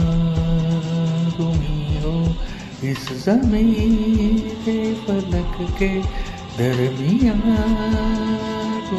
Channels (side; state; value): both; identical; correlation 1.00